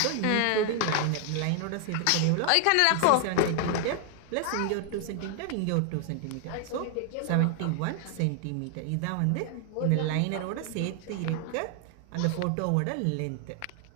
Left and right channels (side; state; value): both; different; correlation 0.00